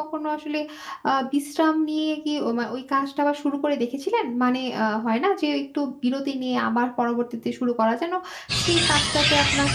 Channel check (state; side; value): identical; both; correlation 1.00